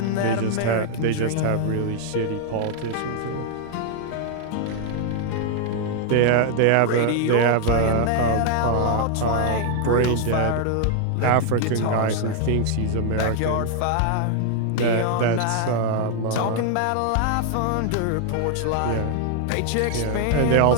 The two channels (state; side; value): different; both; correlation 0.00